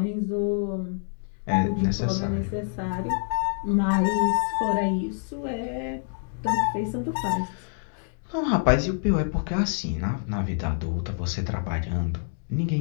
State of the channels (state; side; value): silent; right; 60 dB below the other